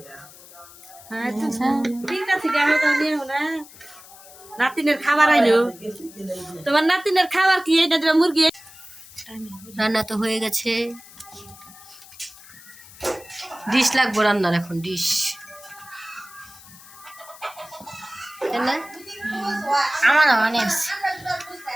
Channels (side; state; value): left; noise; hiss, 20 dB below the sound